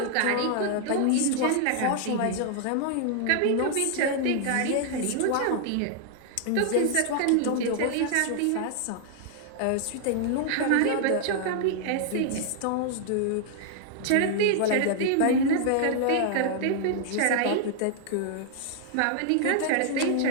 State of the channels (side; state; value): both; different; correlation 0.00